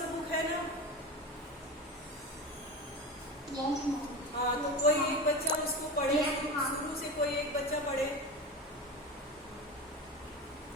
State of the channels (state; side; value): normal; both; correlation 0.26